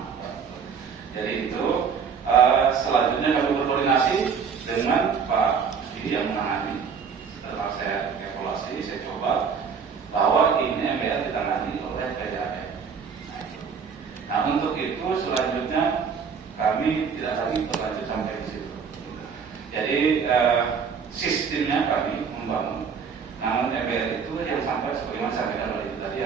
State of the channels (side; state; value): left; quieter; 6.2 dB